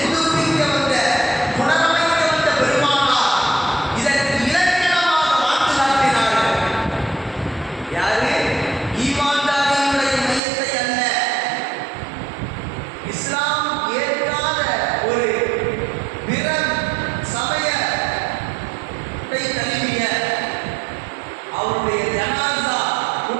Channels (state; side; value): drops out; left; at 10.4 s